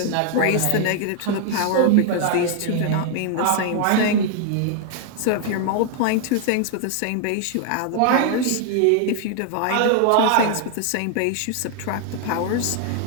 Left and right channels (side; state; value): both; different; correlation 0.00